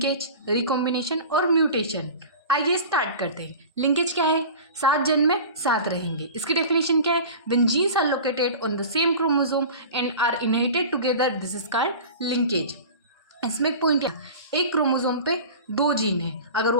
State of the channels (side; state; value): both; inverted; correlation -0.36